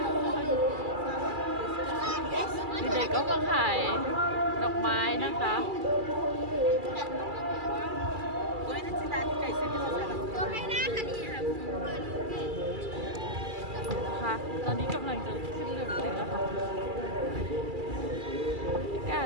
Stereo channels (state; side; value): late; left; 2.3 ms